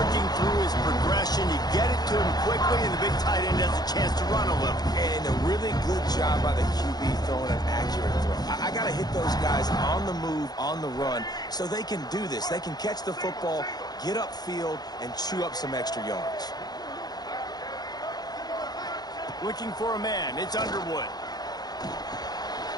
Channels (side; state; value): right; late; 0.19 ms